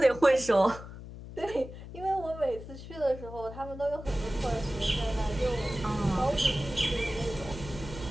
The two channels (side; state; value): left; noise; hum, 13 dB below the sound